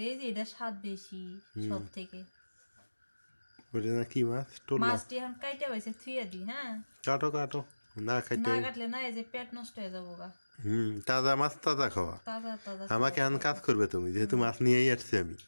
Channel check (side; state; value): both; inverted; correlation -1.00